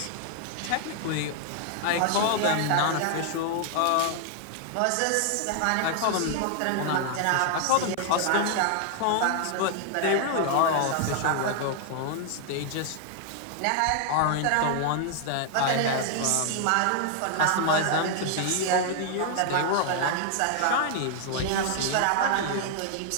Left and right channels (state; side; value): different; both; correlation 0.00